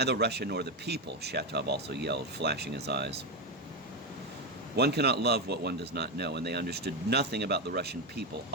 Russia nor the people, Shatov also yelled, flashing his eyes. One cannot love what one does not know, and they understood nothing about the Russian people.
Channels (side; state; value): both; normal; correlation 0.09